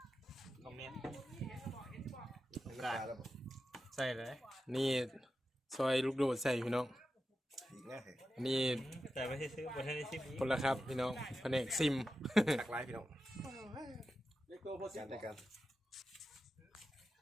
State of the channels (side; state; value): both; normal; correlation 0.91